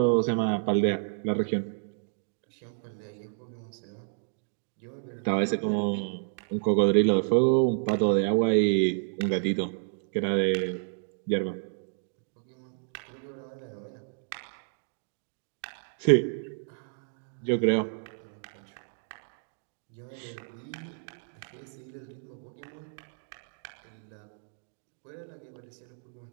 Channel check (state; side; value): silent; left; digital silence